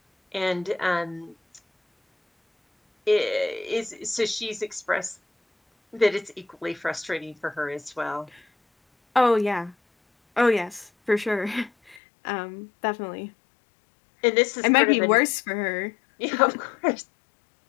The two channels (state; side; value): drops out; right; at 12.0 s